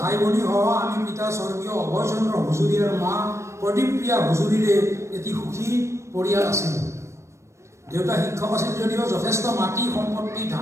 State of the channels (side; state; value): left; late; 0.14 ms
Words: ভাই ভনী সহ আমি পিতা স্বৰ্গীয় অভয়চন্দ্ৰ হুজুৰী আৰু মা প্ৰদীপপ্ৰিয়া হুজুৰীৰে এটি সুখী পৰিয়াল আছিল। দেউতা শিক্ষক আছিল যদিও যথেষ্ট মাটি সম্পত্তি,